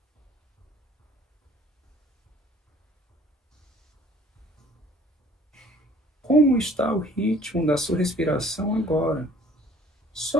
Como está o ritmo da sua respiração agora?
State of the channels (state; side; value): normal; both; correlation 0.54